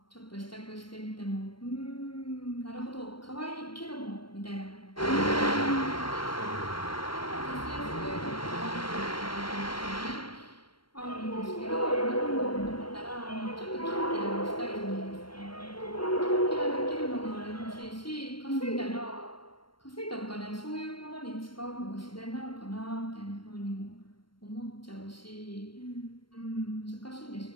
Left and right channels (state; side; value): late; right; 0.73 ms